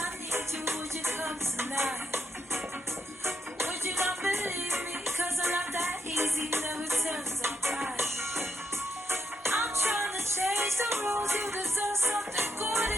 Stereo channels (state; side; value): normal; both; correlation 0.80